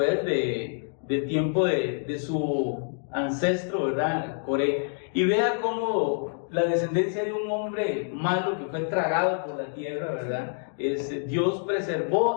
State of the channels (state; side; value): silent; right; 60 dB below the other